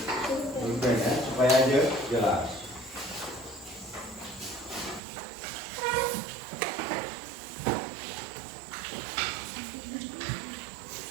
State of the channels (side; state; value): left; drops out; at 5.0 s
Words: ya, supaya aja jelas.